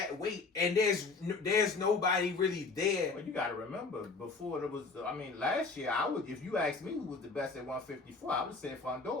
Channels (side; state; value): right; quieter; 4.2 dB